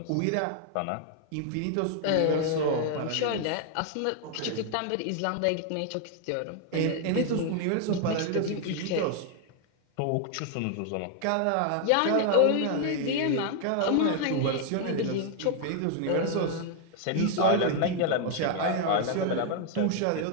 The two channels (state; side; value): different; both; correlation 0.00